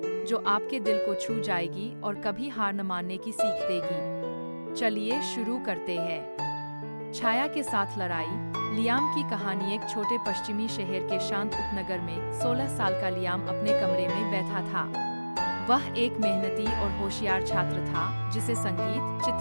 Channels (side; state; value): both; inverted; correlation -1.00